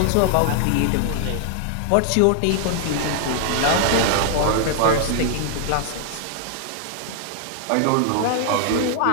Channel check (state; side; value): different; both; correlation 0.00